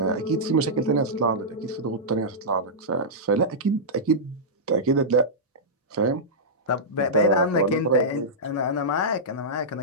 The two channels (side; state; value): both; normal; correlation -0.13